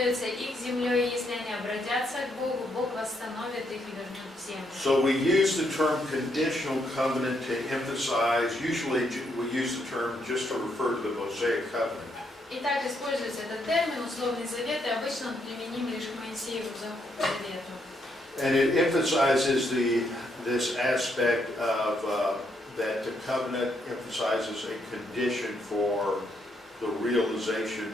их землей, и если они обратятся к Богу, Бог восстановит их и вернет в землю. So we use the term conditional covenant to emphasize, usually we use the term just to refer to the Mosaic covenant. Итак, используется этот термин «условный завет», и обычно он применим лишь к Моисееву завету. And it emphasizes this aspect of that the covenant emphasizes a condition for the realization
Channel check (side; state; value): both; normal; correlation 0.76